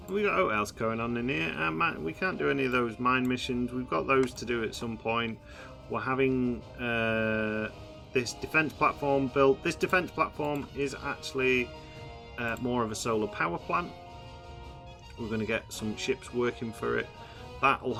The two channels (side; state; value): both; identical; correlation 1.00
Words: we got what else going on in here? We can't do any of those mine missions. We've got those to do at some point. We're having this defense platform built. This defense platform is actually more of a solar power plant. We're going to get some ships working for it. That'll